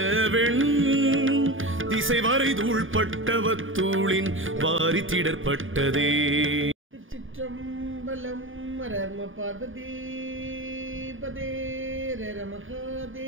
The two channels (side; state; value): left; late; 0.58 ms